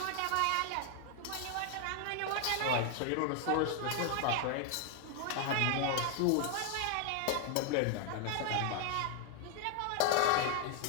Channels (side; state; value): both; different; correlation 0.00